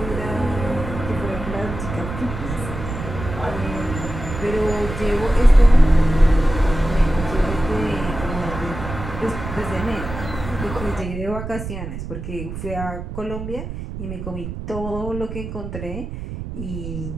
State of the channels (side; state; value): right; noise; rumble, 8 dB below the sound